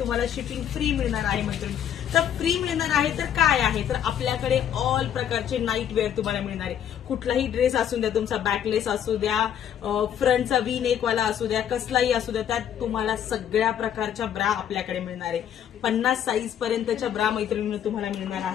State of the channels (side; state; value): right; quieter; 9.6 dB